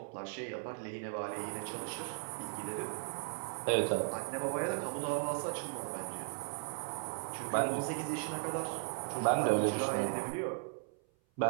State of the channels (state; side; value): silent; left; 53 dB below the other